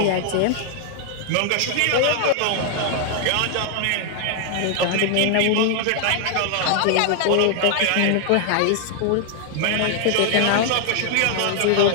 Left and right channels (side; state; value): both; different; correlation 0.00